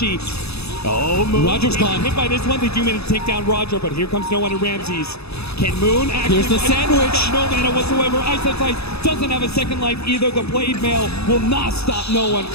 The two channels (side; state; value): right; late; 0.79 ms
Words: Oh, Moon. Roger's gone. Hit by this one. They do manage to take down Roger, but here comes no one in Ramses. Can Moon actually... Here's the sandwich. No mana whatsoever. Ice doesn't have a second life either. The Blade Mail will not stop no one